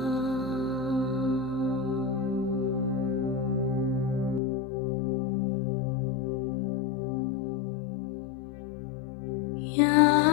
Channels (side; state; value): right; drops out; at 4.4 s